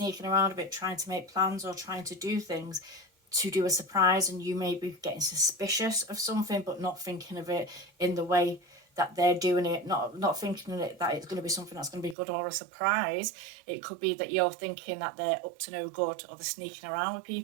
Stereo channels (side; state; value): left; drops out; at 12.2 s